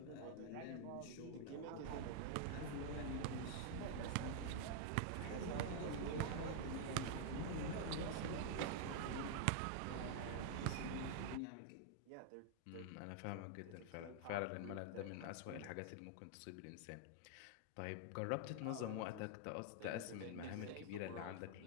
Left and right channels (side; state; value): both; different; correlation 0.00